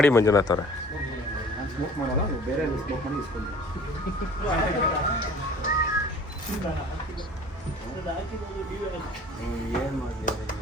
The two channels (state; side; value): normal; both; correlation 0.48